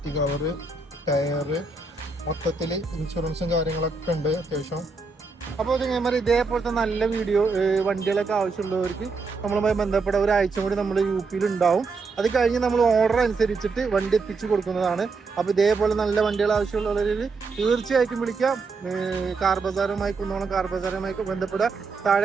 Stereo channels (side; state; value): left; quieter; 4.2 dB